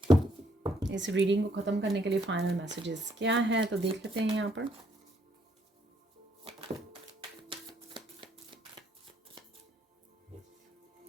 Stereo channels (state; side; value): normal; both; correlation 0.69